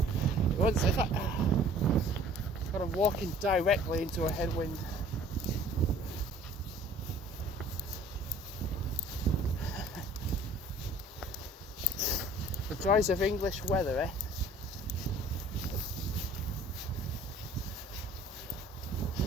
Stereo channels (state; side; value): normal; both; correlation 0.51